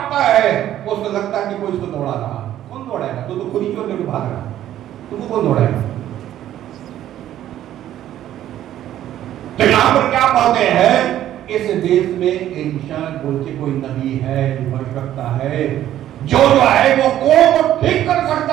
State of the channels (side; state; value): left; quieter; 12.2 dB